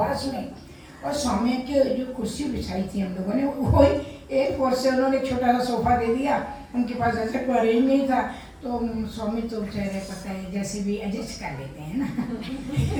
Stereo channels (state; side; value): identical; both; correlation 1.00